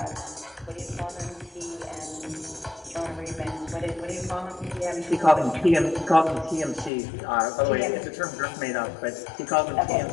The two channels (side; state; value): right; drops out; at 6.9 s